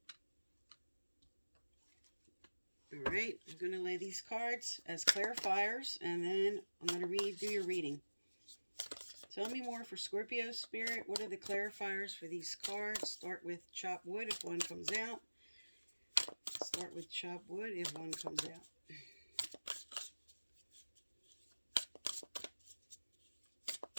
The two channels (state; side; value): inverted; both; correlation -1.00